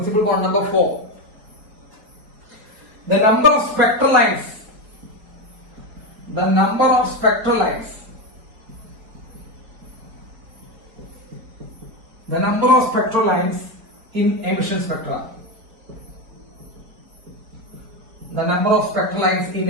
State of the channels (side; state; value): left; late; 4.4 ms